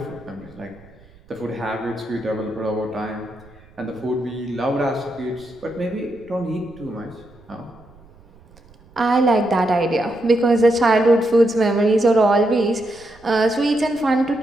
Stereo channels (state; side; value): noise; right; rumble, 26 dB below the sound